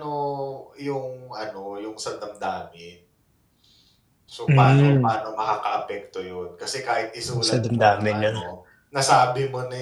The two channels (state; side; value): identical; both; correlation 1.00